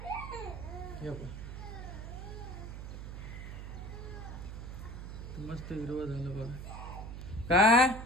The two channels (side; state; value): right; noise; hum, 8 dB below the sound